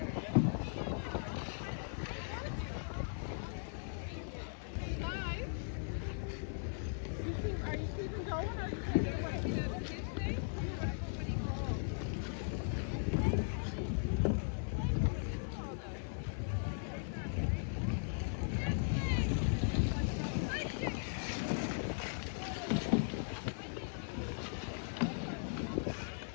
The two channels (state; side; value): silent; right; 52 dB below the other